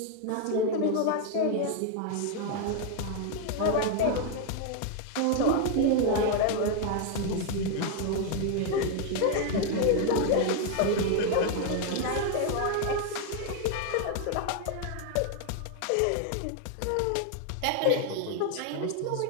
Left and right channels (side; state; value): both; different; correlation 0.01